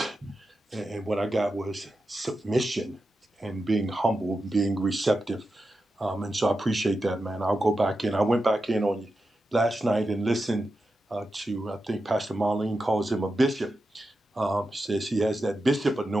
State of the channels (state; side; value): normal; both; correlation 0.90